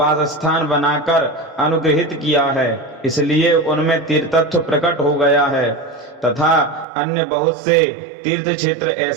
स्थान बनाकर अनुग्रहित किया है, इसलिए उनमें तीर्थत्व प्रकट हो गया है। तथा अन्य बहुत से तीर्थ क्षेत्र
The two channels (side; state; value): left; drops out; at 6.9 s